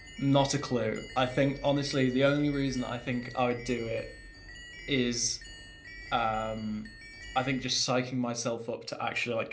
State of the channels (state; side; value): identical; both; correlation 1.00